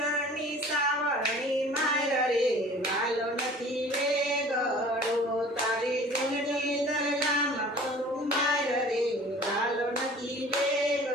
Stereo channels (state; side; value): normal; both; correlation 0.46